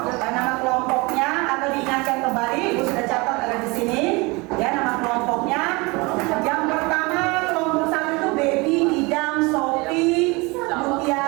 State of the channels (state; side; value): quieter; left; 25.9 dB